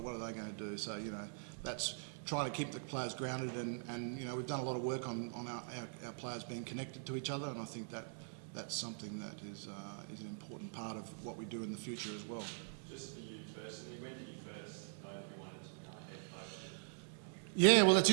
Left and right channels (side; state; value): left; silent; digital silence